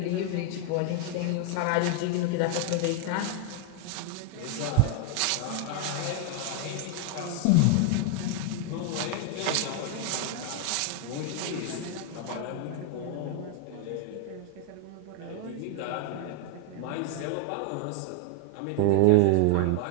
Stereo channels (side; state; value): both; different; correlation 0.00